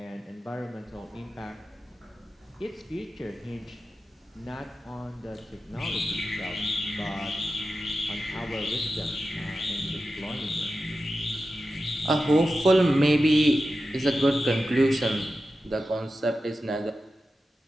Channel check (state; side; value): normal; both; correlation 0.92